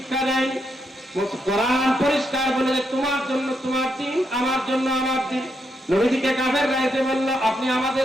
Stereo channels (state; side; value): normal; both; correlation 0.80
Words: দেয়। কোরআন পরিষ্কার বলে যে তোমার জন্য তোমার দিন, আমার জন্য আমার দিন। নবীজিকে কাফেররা এসে বলল, আপনি